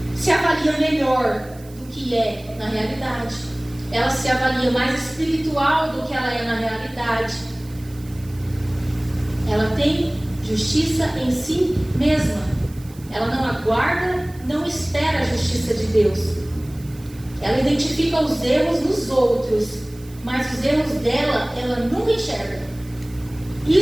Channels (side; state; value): right; noise; hiss, 24 dB below the sound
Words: Se avalia melhor do que é na realidade. Ela se avalia mais espiritual do que ela é na realidade. Ela tem justiça em si mesma. Ela não aguarda, não espera a justiça de Deus. Ela identifica os erros nos outros, mas os erros dela, ela nunca enxerga.